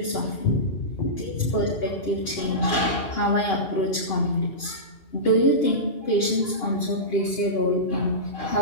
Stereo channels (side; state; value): right; late; 2.4 ms